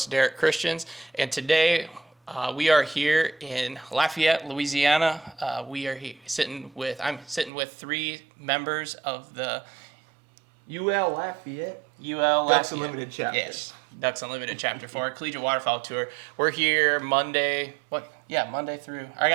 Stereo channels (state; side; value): drops out; left; at 7.5 s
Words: Derek Christians, and today we are here in Lafayette, Louisiana. I'm sitting with three members of the UL Lafayette. Ducks Unlimited chapter. Yes, Ducks Unlimited Chapter 4, Collegiate Waterfowl Tour. We're here Monday through, I